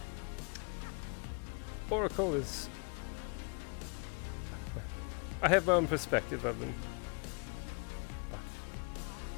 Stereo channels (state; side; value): quieter; right; 35.6 dB